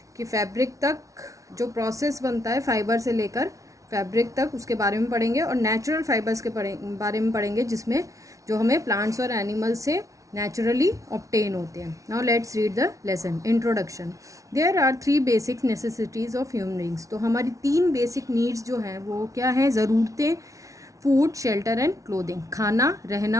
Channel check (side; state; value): left; late; 0.16 ms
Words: कि फैब्रिक तक जो प्रोसेस बनता है फाइबर से लेकर फैब्रिक तक उसके बारे में पढ़ेंगे, और नेचुरल फाइबर्स के बारे में पढ़ेंगे जिसमें जो हमें प्लांट्स और एनिमल्स से नेचुरली ऑब्टेन होते हैं। Now let's read the lesson. Introduction. There are 3 basic necessities of human beings. तो हमारी 3 बेसिक नीड्स जो हैं वो क्या हैं? ज़रूरतें, फूड, शेल्टर एंड क्लोथिंग, खाना,